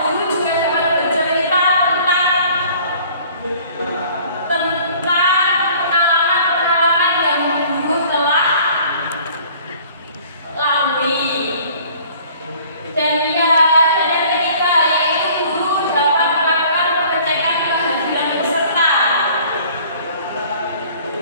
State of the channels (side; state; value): both; inverted; correlation -0.52